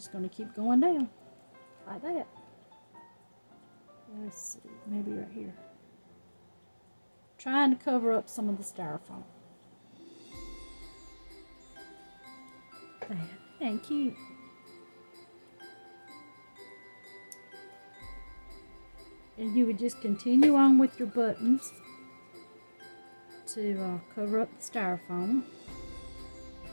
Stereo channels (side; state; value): both; inverted; correlation -1.00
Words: going to keep going down like that. Let's see, maybe right here. Trying to cover up some of the styrofoam. Thank you. And you would just continue on with your buttons to cover up the styrofoam